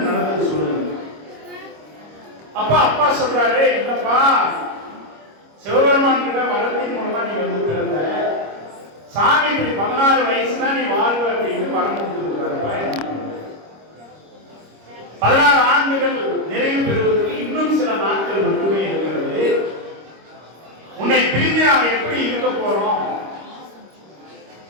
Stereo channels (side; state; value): left; late; 25 ms